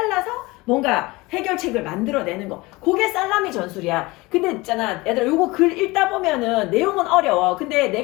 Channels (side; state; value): right; quieter; 22.3 dB